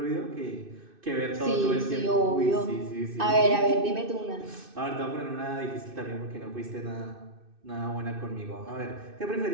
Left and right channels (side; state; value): left; late; 2.6 ms